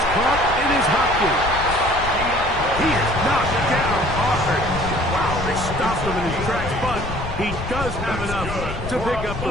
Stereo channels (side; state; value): left; noise; rumble, 8 dB below the sound